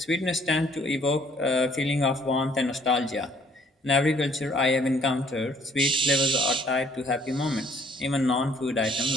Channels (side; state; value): both; normal; correlation 0.61